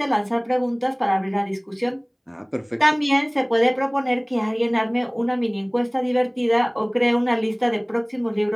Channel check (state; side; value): identical; both; correlation 1.00